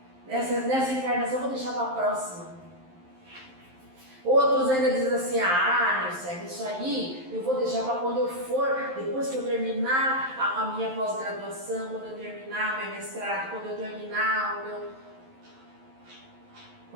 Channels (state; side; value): late; left; 11 ms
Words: Nessa encarnação eu vou deixar para a próxima. Outros ainda dizem assim, Nilce, isso aí eu vou deixar para quando eu for, depois que eu terminar a minha pós-graduação, quando eu terminar meu mestrado, quando eu terminar